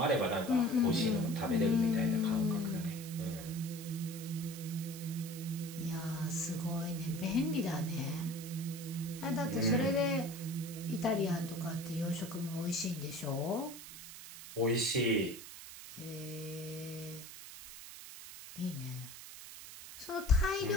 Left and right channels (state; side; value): noise; right; hiss, 13 dB below the sound